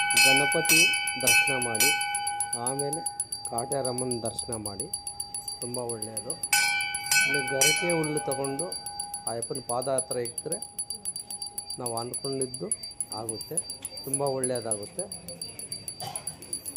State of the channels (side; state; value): both; identical; correlation 1.00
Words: ಗಣಪತಿ ದರ್ಶನ ಮಾಡಿ ಆಮೇಲೆ ಕಾಟೇರಮ್ಮನ ದರ್ಶನ ಮಾಡಿ ತುಂಬ ಒಳ್ಳೆಯದು. ಇಲ್ಲಿ ಗರಿಕೆ ಹುಲ್ಲು ತಗೊಂಡು ಅಯ್ಯಪ್ಪನ ಪಾದ ಹತ್ರ ಇಟ್ಟರೆ ನಾವು ಅಂದ್ಕೊಂಡಿದ್ದು ಆಗುತ್ತೆ, ತುಂಬ ಒಳ್ಳೆಯದಾಗುತ್ತೆ.